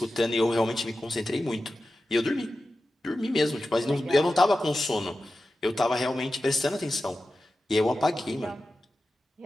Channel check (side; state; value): both; normal; correlation 0.93